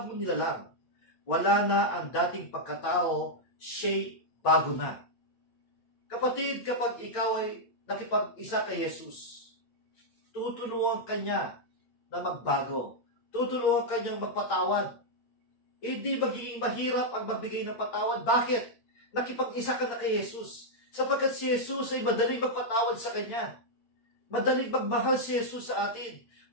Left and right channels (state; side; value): late; right; 8.7 ms